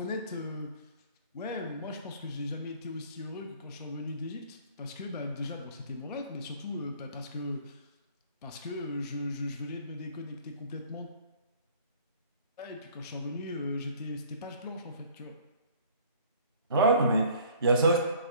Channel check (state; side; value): inverted; both; correlation -0.53